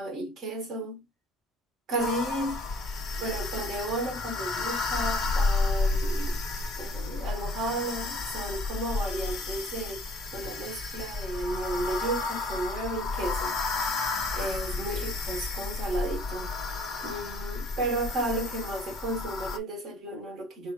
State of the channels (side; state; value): both; normal; correlation 0.55